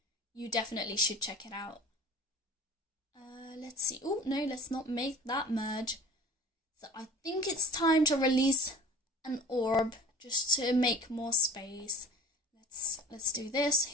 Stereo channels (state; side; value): normal; both; correlation 0.42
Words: you definitely should check it out. Let's see. Oh, no, let's not make that merge. So I think it's time to release an orb just to make more space. Let's do this